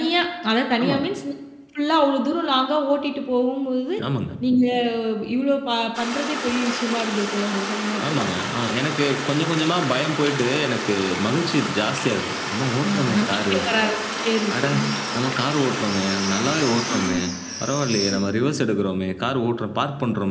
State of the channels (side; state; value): both; identical; correlation 1.00